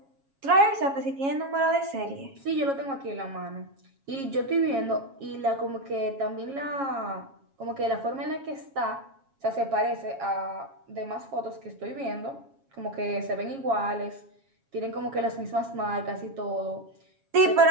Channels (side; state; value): left; late; 7.3 ms